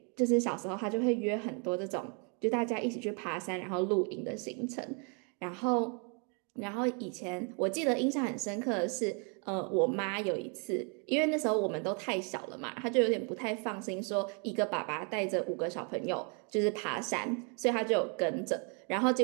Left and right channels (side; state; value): left; quieter; 37.0 dB